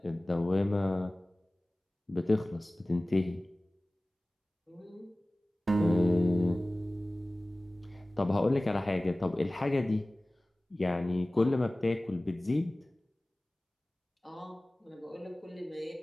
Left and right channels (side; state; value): both; normal; correlation 0.98